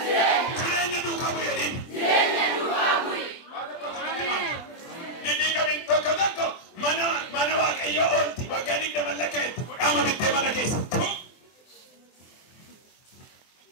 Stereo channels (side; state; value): right; late; 24 ms